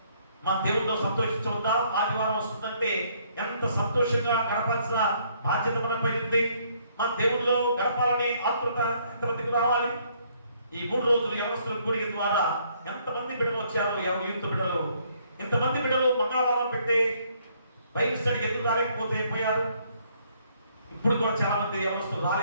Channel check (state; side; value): inverted; both; correlation -0.67